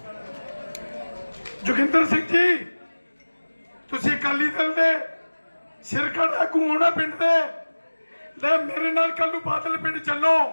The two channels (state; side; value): inverted; both; correlation -1.00